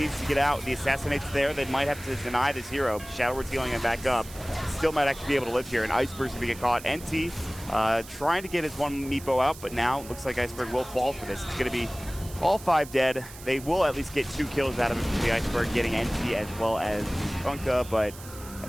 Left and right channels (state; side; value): noise; right; hiss, 16 dB below the sound